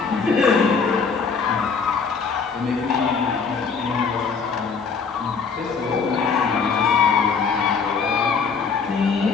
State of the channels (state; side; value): quieter; right; 5.5 dB